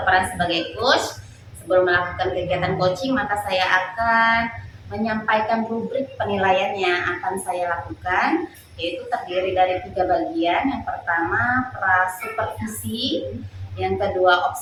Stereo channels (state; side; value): identical; both; correlation 1.00